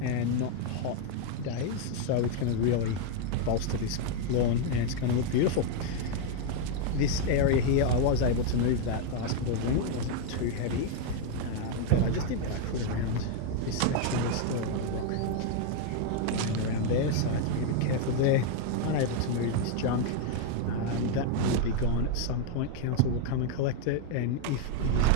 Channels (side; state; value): both; different; correlation 0.00